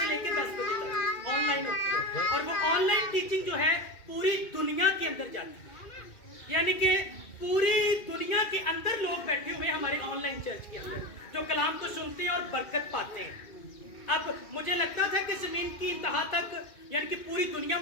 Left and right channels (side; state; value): right; late; 2.3 ms